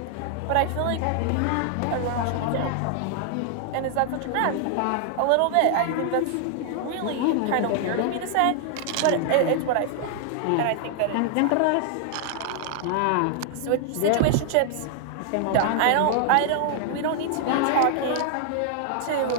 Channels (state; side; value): different; both; correlation 0.00